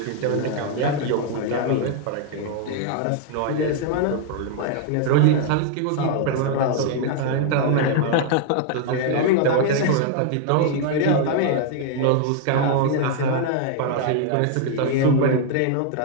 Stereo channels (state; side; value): different; both; correlation 0.00